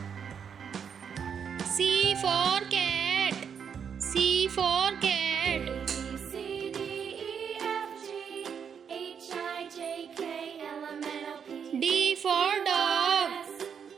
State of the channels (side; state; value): left; quieter; 7.2 dB